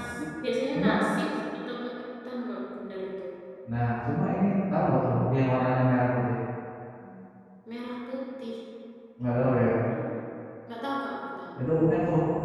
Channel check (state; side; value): identical; both; correlation 1.00